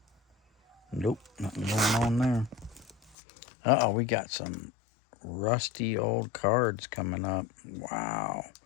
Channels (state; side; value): drops out; right; at 3.2 s